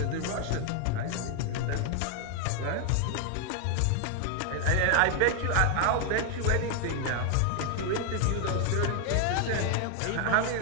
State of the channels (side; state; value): both; different; correlation 0.00